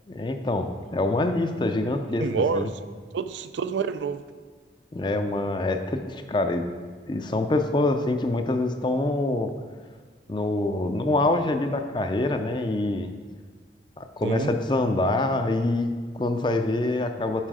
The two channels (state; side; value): normal; both; correlation 0.57